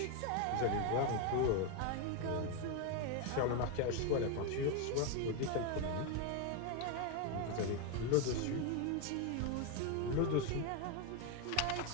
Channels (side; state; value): both; different; correlation 0.01